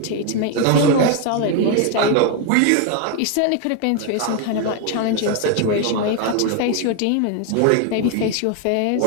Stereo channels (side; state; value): both; different; correlation 0.01